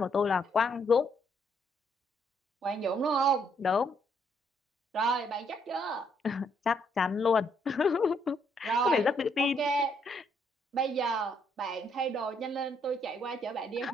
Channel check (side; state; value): both; normal; correlation 0.72